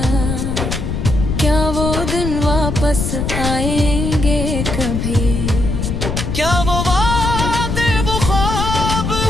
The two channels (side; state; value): left; noise; rumble, 2 dB below the sound